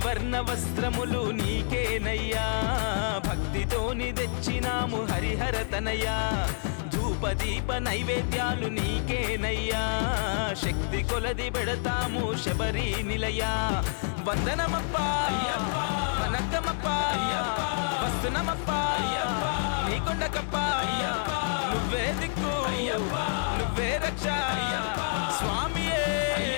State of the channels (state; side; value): silent; right; 59 dB below the other